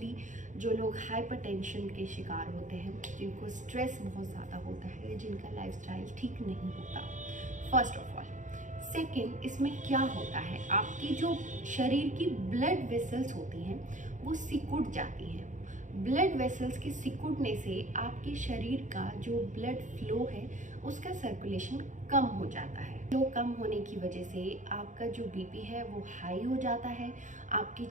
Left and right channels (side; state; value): left; late; 0.36 ms